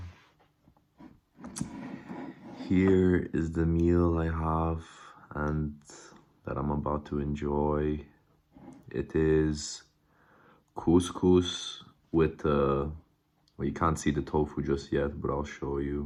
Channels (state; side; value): identical; both; correlation 1.00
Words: Here is the meal I have and that I'm about to enjoy. It is couscous with, well, you can't see the tofu just yet, but I'll show